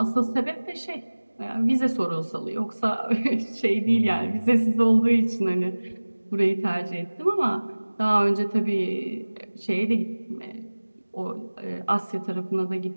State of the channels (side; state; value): both; inverted; correlation -1.00